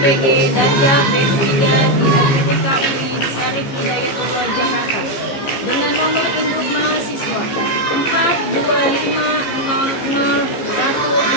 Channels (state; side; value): late; right; 15 ms